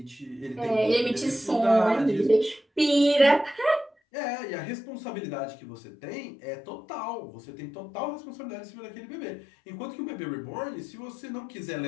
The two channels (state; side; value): drops out; right; at 3.9 s